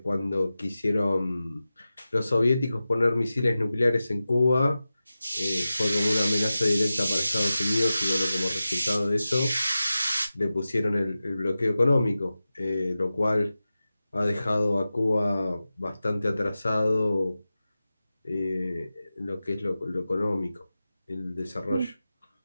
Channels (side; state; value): both; inverted; correlation -0.94